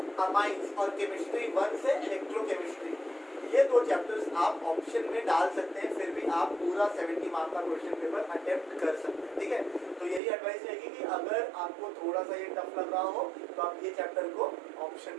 अमाइंस और केमिस्ट्री 1 से इलेक्ट्रोकेमिस्ट्री ये 2 चैप्टर्स आप ऑप्शन में डाल सकते हैं, फिर भी आप पूरा 70 मार्क का क्वेश्चन पेपर अटेम्प्ट कर सकते हैं, ठीक है। तो यही एडवाइस रहेगी कि अगर आपको थोड़ा सा ये टफ लग रहा हो तो आप ये चैप्टर को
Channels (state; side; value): drops out; left; at 10.2 s